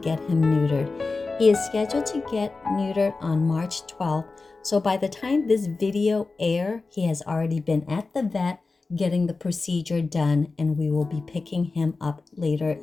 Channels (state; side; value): quieter; right; 3.9 dB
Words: him neutered. He is scheduled to get neutered on March 12th. So by the time this video airs, he has already been at the vet getting the procedure done, and we will be picking him up later